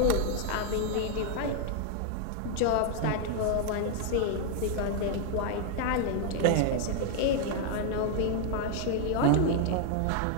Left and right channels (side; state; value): both; different; correlation 0.00